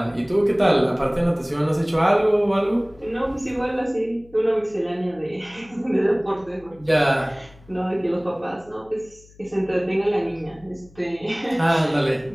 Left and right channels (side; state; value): left; noise; hum, 25 dB below the sound